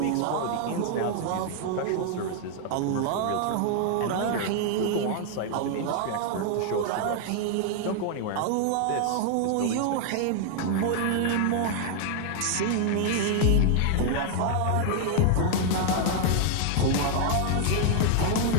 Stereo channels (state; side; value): different; both; correlation 0.00